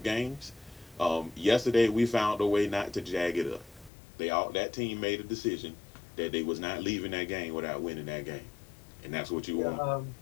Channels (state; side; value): drops out; right; at 3.9 s